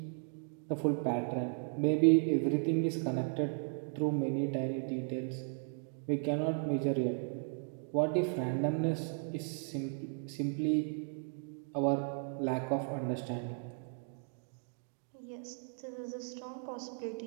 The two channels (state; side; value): silent; left; 54 dB below the other